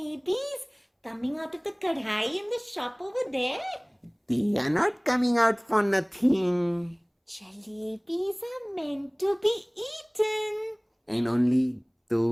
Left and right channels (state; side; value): identical; both; correlation 1.00